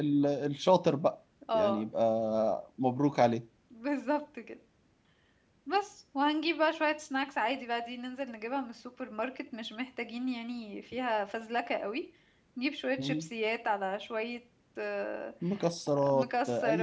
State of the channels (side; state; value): both; identical; correlation 1.00